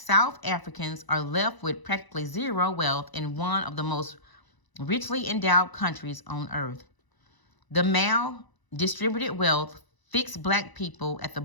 Africans are left with practically zero wealth in one of the most richly endowed countries on earth. The mal-distributed wealth fixed Black people at the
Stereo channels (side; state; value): right; late; 1.0 ms